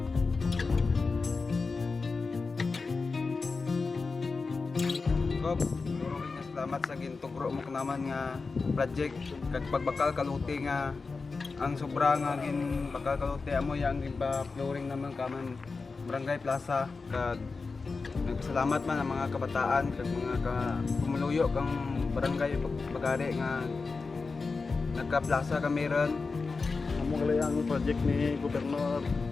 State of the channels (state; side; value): quieter; right; 4.3 dB